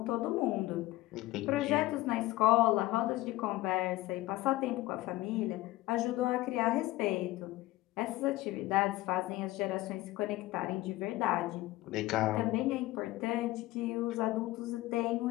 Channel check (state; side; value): quieter; right; 17.9 dB